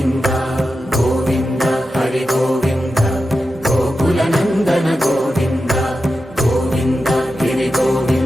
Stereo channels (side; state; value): both; normal; correlation 0.91